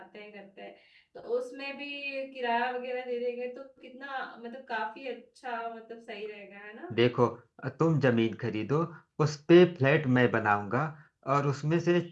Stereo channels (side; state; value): both; identical; correlation 1.00